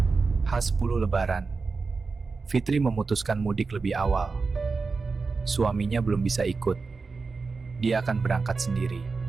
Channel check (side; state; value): left; quieter; 4.4 dB